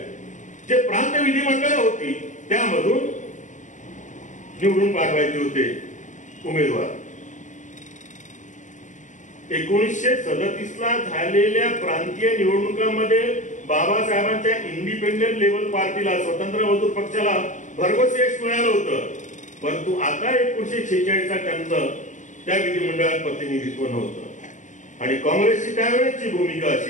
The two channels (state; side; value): late; right; 0.36 ms